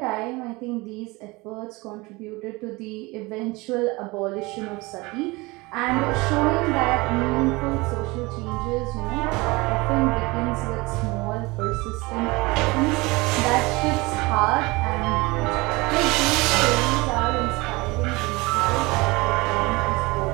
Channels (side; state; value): left; quieter; 23.6 dB